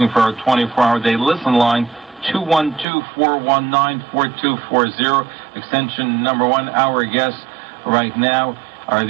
for our 24-hour day listen line, 212-419-4240, extension number 1. Our guests right now are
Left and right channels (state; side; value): drops out; left; at 2.9 s